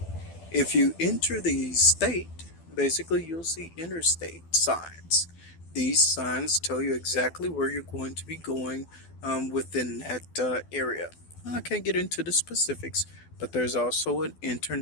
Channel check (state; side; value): late; right; 12 ms